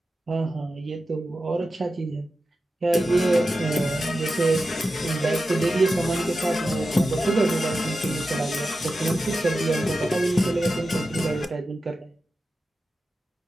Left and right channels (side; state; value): both; normal; correlation 0.92